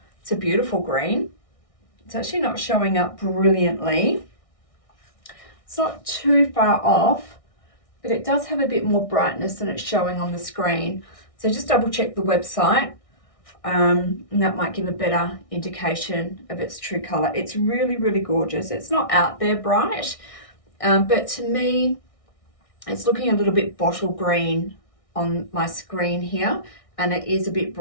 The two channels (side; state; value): right; late; 1.6 ms